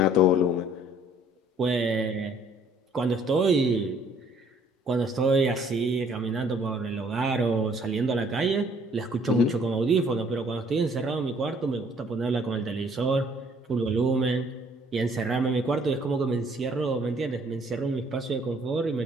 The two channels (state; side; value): normal; both; correlation 0.61